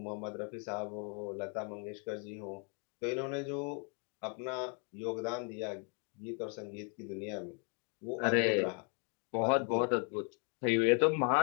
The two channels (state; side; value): quieter; right; 39.2 dB